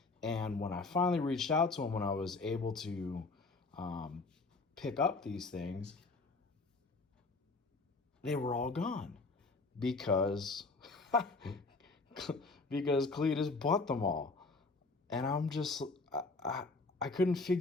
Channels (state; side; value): quieter; right; 3.7 dB